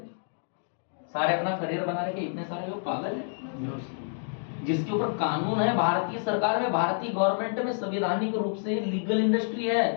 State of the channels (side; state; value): right; silent; digital silence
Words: सारे अपना करियर बना रहे, इतने सारे लोग पागल है? जिसके ऊपर कानून है, भारतीय सरकार में, भारतीय गवर्नमेंट में संवैधानिक रूप से लीगल इंडस्ट्री है।